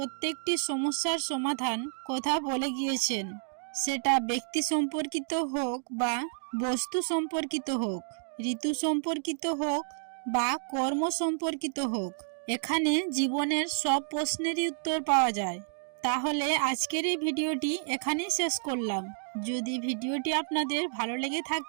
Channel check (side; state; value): left; silent; digital silence